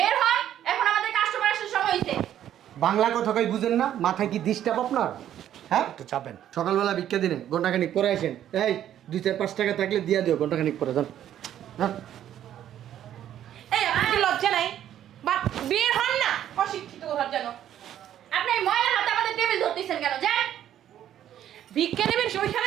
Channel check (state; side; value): quieter; left; 11.1 dB